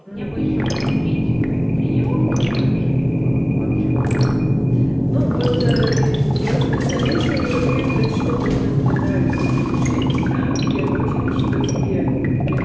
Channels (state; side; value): identical; both; correlation 1.00